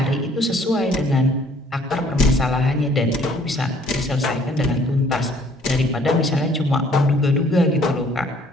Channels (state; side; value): normal; both; correlation 0.59